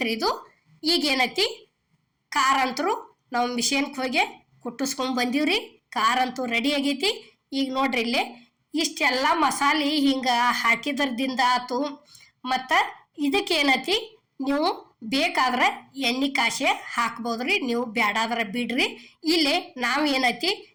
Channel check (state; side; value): identical; both; correlation 1.00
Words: ಇದು. ಈಗೇನೈತಿ ಖಾರ ಅಂತರೂ ನಾವು ಮಿಷನ್ಗೆ ಹೋಗಿ ಕುಟ್ಟಿಸ್ಕೊಂಡ್ ಬಂದೀವ್ರಿ. ಖಾರ ಅಂತೂ ರೆಡಿ ಆಗೈತಿ. ಈಗ ನೋಡ್ರಿ ಇಲ್ಲೇ ಇಷ್ಟೆಲ್ಲ ಮಸಾಲೆ ಹಿಂಗೆ ಹಾಕಿದ್ರದಿಂದ ಆತು. ಮತ್ತು ಇದಕ್ಕೇನೈತಿ ನೀವು ಬೇಕಾದ್ರೆ ಎಣ್ಣೆ ಕಾಸೆ ಹಾಕ್ಬೋದ್ರಿ, ನೀವು ಬ್ಯಾಡಾದ್ರೆ ಬಿಡ್ರಿ. ಇಲ್ಲಿ ನಾವು ಏನೈತಿ